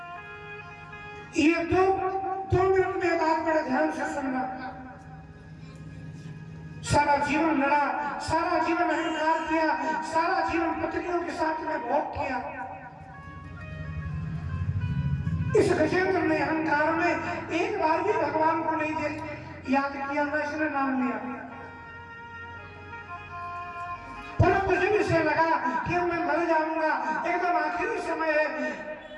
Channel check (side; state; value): both; identical; correlation 1.00